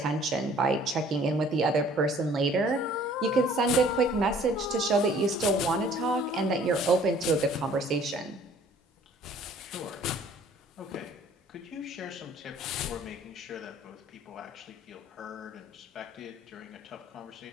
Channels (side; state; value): both; normal; correlation 0.55